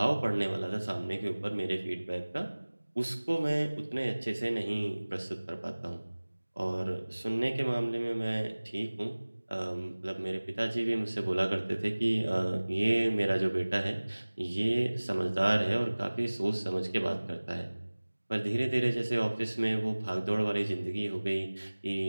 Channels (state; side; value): inverted; both; correlation -1.00